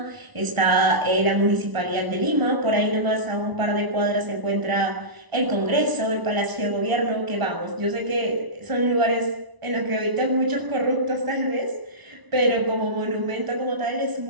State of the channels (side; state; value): left; late; 1.0 ms